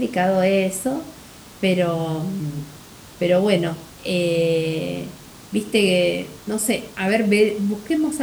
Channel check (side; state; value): both; identical; correlation 1.00